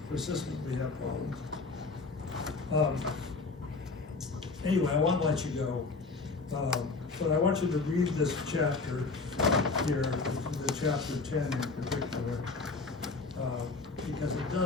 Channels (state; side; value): quieter; right; 4.0 dB